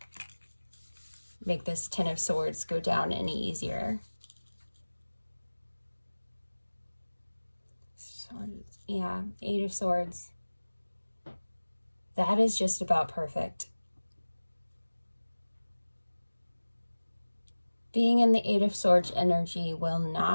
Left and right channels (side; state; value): both; inverted; correlation -1.00